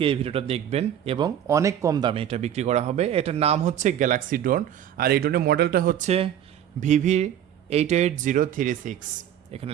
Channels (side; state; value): left; quieter; 10.3 dB